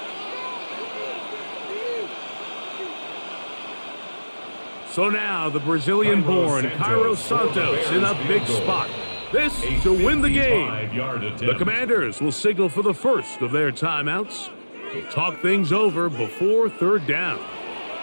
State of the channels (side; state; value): both; inverted; correlation -1.00